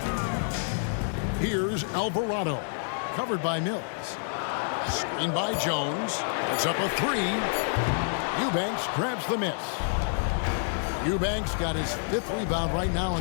Here's Alvarado. Covered by Mills. Screened by Jones. It's up a three. Eubanks grabs the miss. Eubanks got his 5th rebound right now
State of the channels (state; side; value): silent; right; digital silence